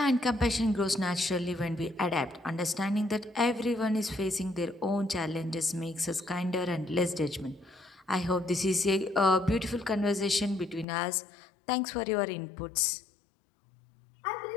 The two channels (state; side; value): drops out; right; at 10.9 s